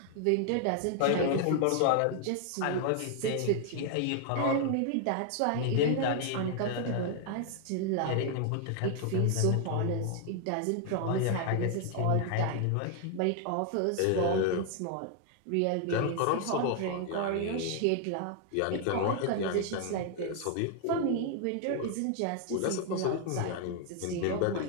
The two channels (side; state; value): both; different; correlation 0.00